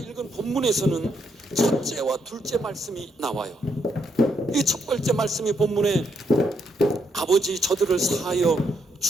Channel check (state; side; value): normal; both; correlation 0.76